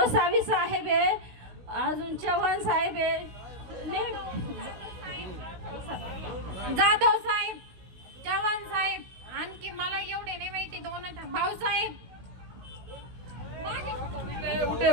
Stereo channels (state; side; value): late; left; 16 ms